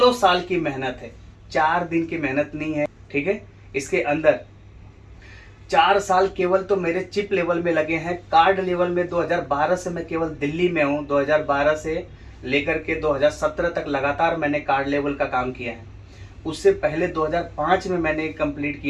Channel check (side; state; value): both; identical; correlation 1.00